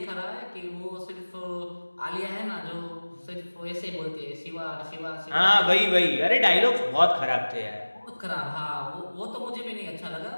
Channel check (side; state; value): both; inverted; correlation -1.00